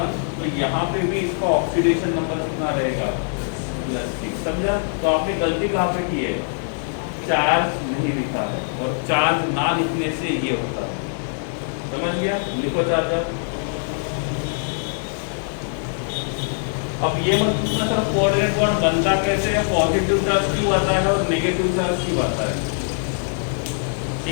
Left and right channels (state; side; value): silent; right; 57 dB below the other